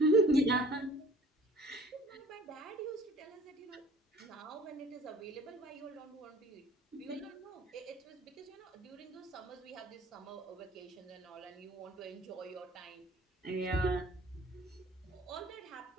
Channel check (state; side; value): normal; both; correlation 0.49